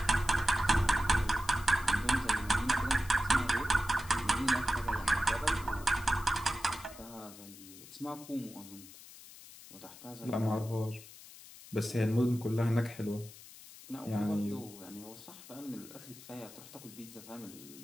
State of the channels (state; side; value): noise; left; hiss, 18 dB below the sound